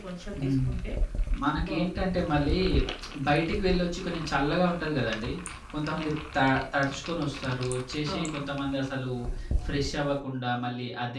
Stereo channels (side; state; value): both; identical; correlation 1.00